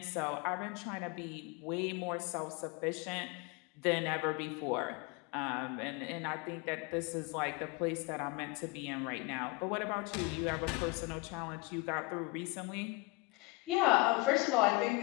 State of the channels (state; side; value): quieter; right; 24.2 dB